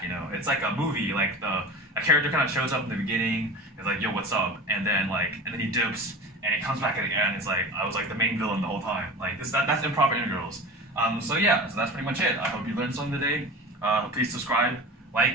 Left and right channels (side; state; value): both; normal; correlation 0.33